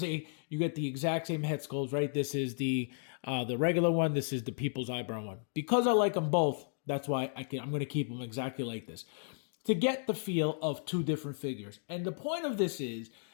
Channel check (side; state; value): right; silent; digital silence